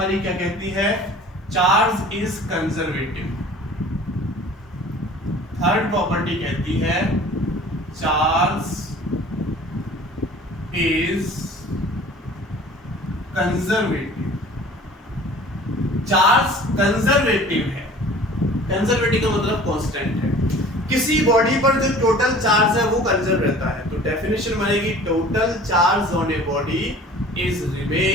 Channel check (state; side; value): normal; both; correlation 0.46